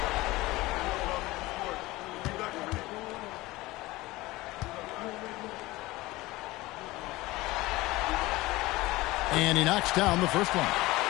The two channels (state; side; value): quieter; right; 19.6 dB